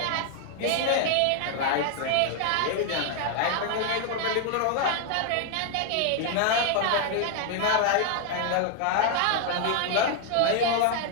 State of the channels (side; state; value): both; different; correlation 0.00